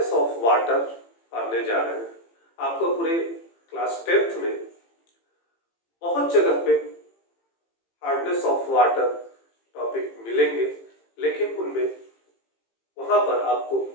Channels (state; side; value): late; right; 18 ms